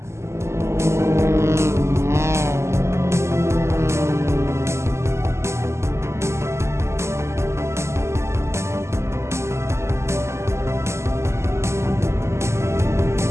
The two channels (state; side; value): late; left; 0.13 ms